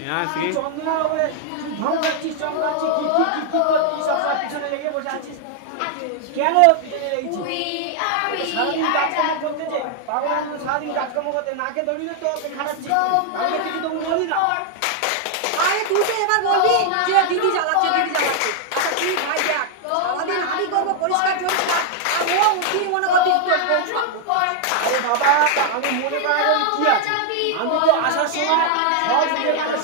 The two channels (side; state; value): both; different; correlation 0.00